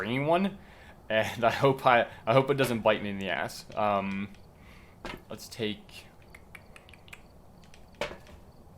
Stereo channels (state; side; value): identical; both; correlation 1.00